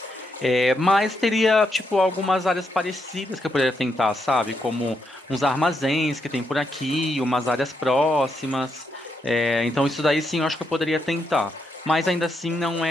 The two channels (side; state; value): both; normal; correlation 0.80